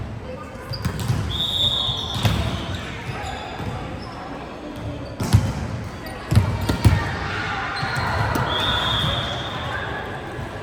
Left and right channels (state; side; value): identical; both; correlation 1.00